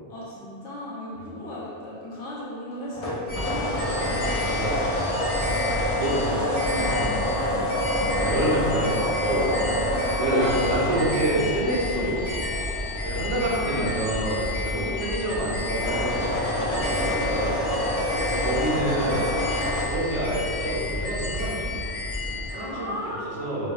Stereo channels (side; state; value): both; normal; correlation 0.10